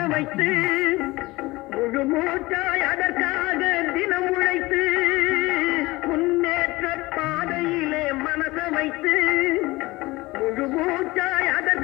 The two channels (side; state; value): right; quieter; 21.0 dB